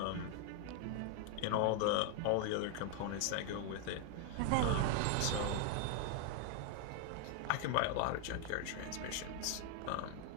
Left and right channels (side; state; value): both; different; correlation 0.00